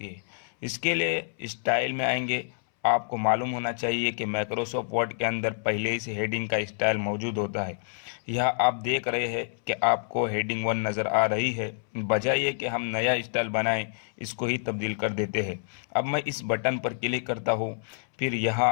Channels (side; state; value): right; silent; 60 dB below the other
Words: है। इसके लिए स्टाइल में आएंगे। आपको मालूम होना चाहिए कि माइक्रोसॉफ्ट वर्ड के अंदर पहले ही से हेडिंग का स्टाइल मौजूद होता है। यह आप देख रहे हैं कि आपको हेडिंग 1 नज़र आ रही है। बजाय ये कि हम नया स्टाइल बनाएं, इसको ही तब्दील कर देते हैं। अब मैं इस बटन पर क्लिक करता हूँ, फिर